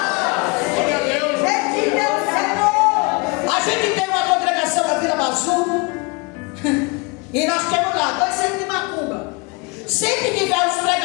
A gente tem uma congregação na Vila Bazu e nós temos lá 2 centros de macumba. Sempre que vai os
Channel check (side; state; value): right; quieter; 28.8 dB